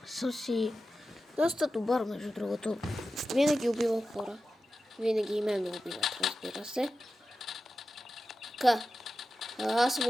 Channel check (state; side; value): normal; both; correlation 0.93